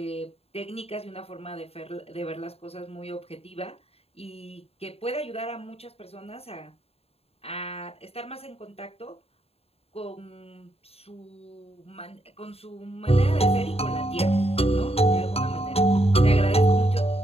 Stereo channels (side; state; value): right; late; 0.29 ms